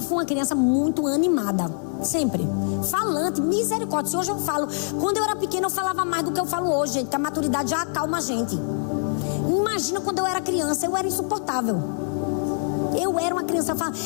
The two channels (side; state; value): right; silent; 60 dB below the other